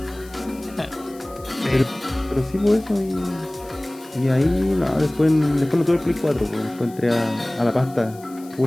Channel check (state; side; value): noise; left; hiss, 23 dB below the sound